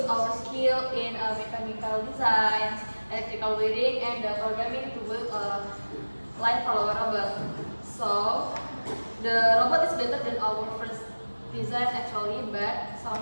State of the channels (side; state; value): both; inverted; correlation -1.00